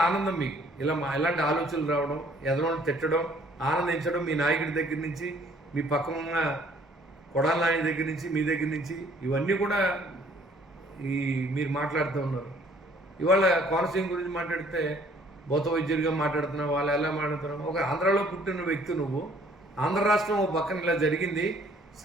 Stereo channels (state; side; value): normal; both; correlation 0.59